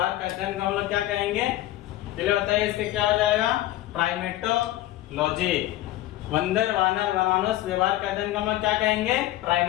का अध्ययन को हम लोग क्या कहेंगे? चलिए बताइए, इसके क्या हो जाएगा? प्राइमेटोलॉजी। बंदर, वानर, वनमानुष व्यवहार का अध्ययन को हम लोग क्या कहेंगे?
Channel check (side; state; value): right; quieter; 15.0 dB